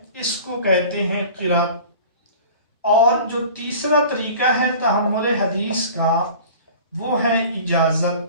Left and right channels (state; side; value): inverted; both; correlation -0.42